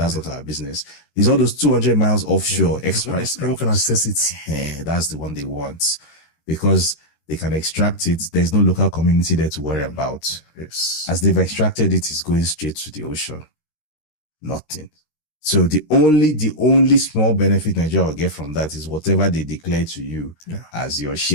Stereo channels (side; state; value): right; late; 24 ms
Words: not our business. It's all those 200 miles offshore express. Everyone can access it. That's the one they want because they can extract it. There's no local community there to worry about. Yes. As they've extracted it, it's going straight to the ocean. Nothing. So the only small benefit Nigeria will get from that is whatever they declare to you as your